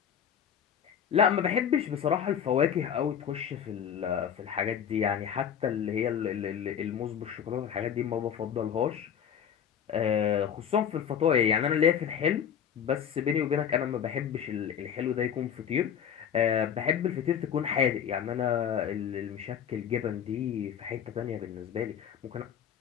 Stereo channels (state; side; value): quieter; right; 8.4 dB